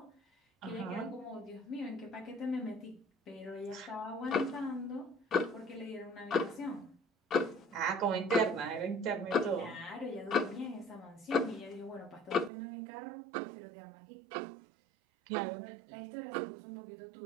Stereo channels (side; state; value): left; drops out; at 12.5 s